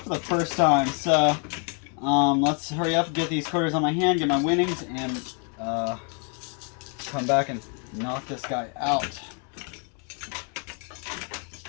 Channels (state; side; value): quieter; right; 39.3 dB